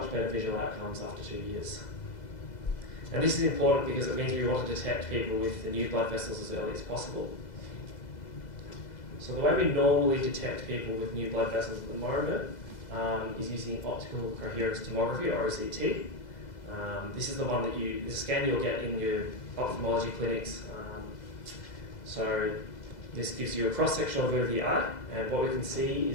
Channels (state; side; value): late; right; 2.0 ms